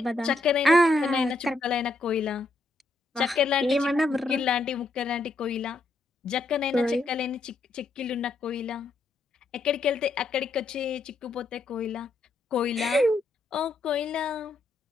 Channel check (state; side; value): quieter; right; 3.2 dB